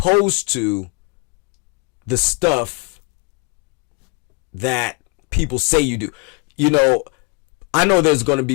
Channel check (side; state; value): right; quieter; 31.1 dB